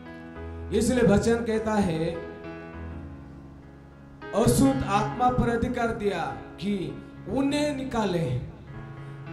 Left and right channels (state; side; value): identical; both; correlation 1.00